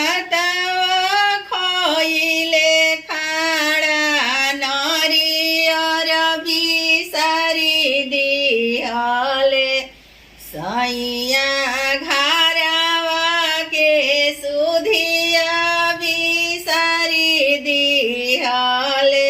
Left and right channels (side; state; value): both; identical; correlation 1.00